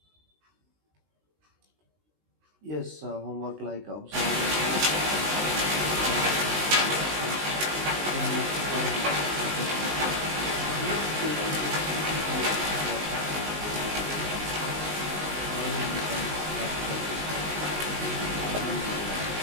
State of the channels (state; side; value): late; left; 19 ms